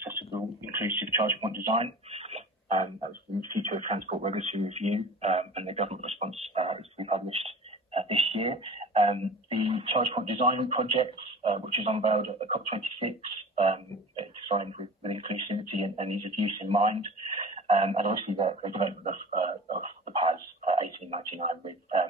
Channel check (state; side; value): normal; both; correlation 0.39